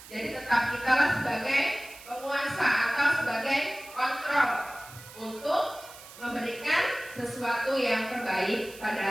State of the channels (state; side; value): noise; right; hiss, 18 dB below the sound